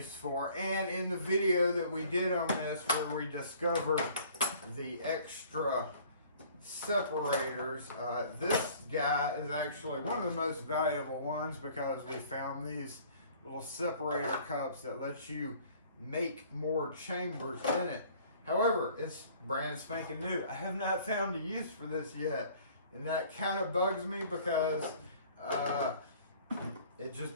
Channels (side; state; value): both; inverted; correlation -0.53